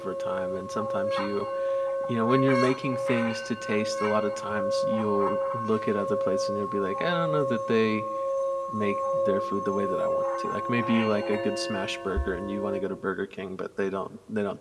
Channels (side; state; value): both; identical; correlation 1.00